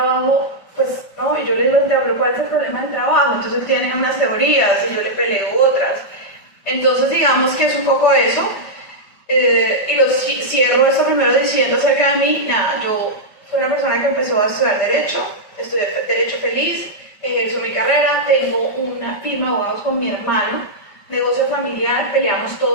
pues, no, y yo le digo, pero ¿cuál es el problema del trabajo? Entonces él tiene unas teorías y yo le peleo otras. Entonces digamos que es un poco eso. Y cierro esto primero diciendo acerca de mí, nada, yo soy una persona que empezó a estudiar Derecho, estudié Derecho feliz, ejerzo mi carrera, tengo una firma de abogados con mi hermano, negocio familiar, peleamos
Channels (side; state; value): right; late; 5.0 ms